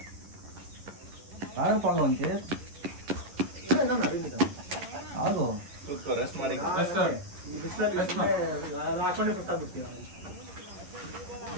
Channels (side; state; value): left; late; 11 ms